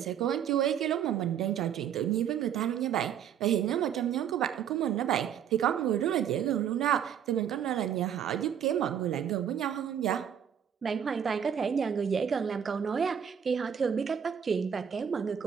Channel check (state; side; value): quieter; left; 8.7 dB